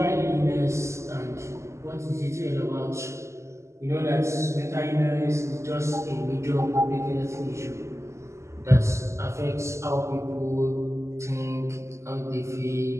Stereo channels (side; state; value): left; late; 0.13 ms